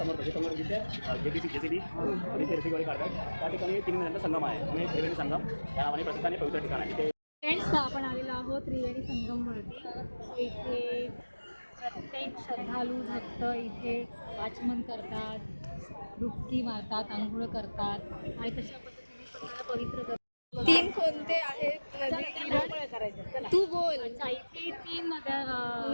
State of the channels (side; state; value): both; inverted; correlation -1.00